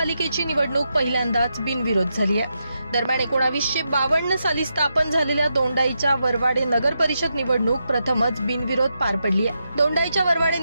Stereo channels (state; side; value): inverted; both; correlation -0.85